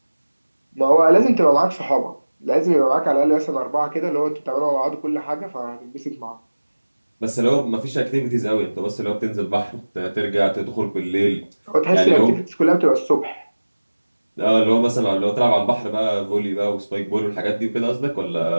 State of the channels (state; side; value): inverted; both; correlation -1.00